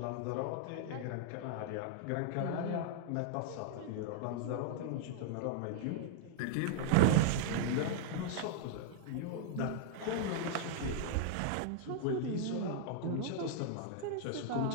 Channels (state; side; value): different; both; correlation -0.01